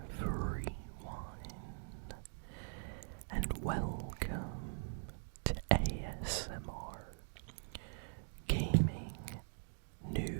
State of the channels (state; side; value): silent; left; digital silence